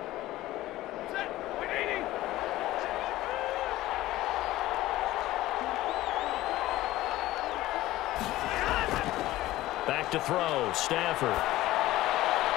Back to throw, Stafford.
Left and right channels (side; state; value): right; quieter; 16.3 dB